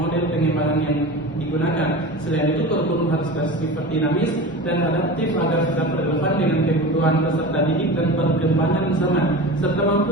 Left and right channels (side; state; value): both; normal; correlation 0.31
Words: pengembangan yang digunakan. Selain itu, kurikulum harus bersifat dinamis dan adaptif agar tetap relevan dengan kebutuhan peserta didik dan perkembangan zaman, serta mampu